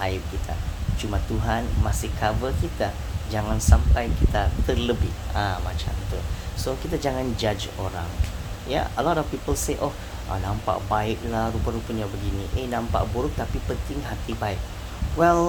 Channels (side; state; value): both; identical; correlation 1.00